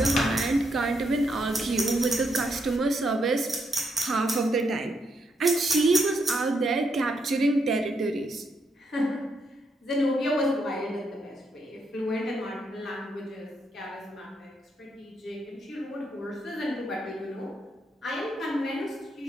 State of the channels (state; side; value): normal; both; correlation 0.78